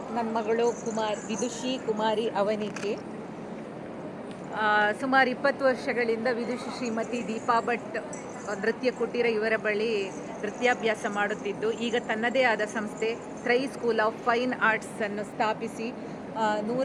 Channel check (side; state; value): both; identical; correlation 1.00